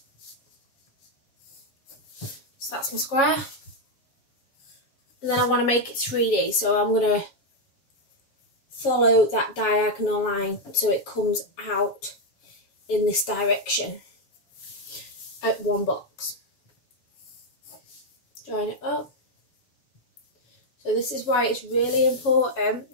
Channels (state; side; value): late; right; 7.2 ms